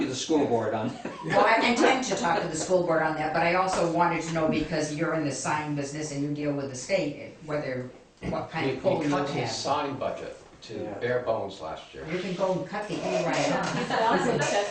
the school board on that. well, I intend to talk to the school board on that, but I also wanted to know, because you're in the sign business and you deal with the state, what kind of pull We you would cut his have. sign budget to Yeah. bare bones last year. You can go and cut the E right off. You could also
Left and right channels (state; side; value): identical; both; correlation 1.00